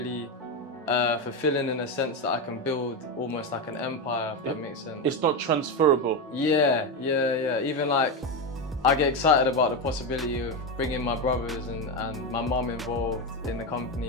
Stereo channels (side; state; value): both; normal; correlation 0.12